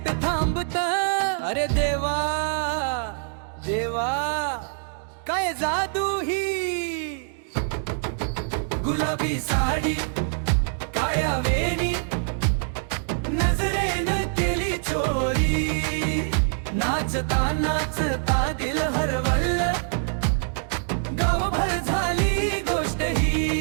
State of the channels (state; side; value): silent; left; digital silence